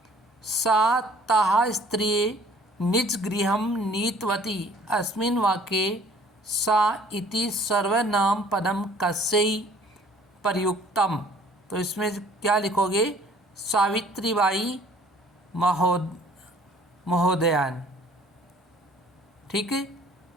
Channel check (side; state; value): both; normal; correlation 0.54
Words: सा ताः स्त्रिये निज गृहं नीतवती, अस्मिन् वाक्ये सा इति सर्वनाम पदम कस्यै प्रयुक्तम, तो इसमें क्या लिखोगे, सावित्रीबाई महोदयान। ठीक है।